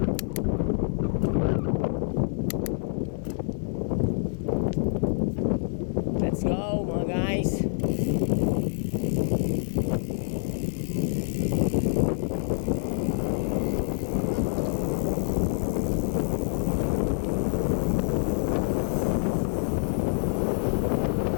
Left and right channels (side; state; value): right; silent; digital silence